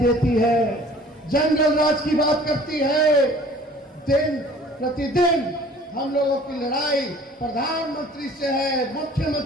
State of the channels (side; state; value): both; normal; correlation 0.50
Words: है, जंगल राज की बात करती है। दिन प्रतिदिन हम लोगों की लड़ाई प्रधानमंत्री से है,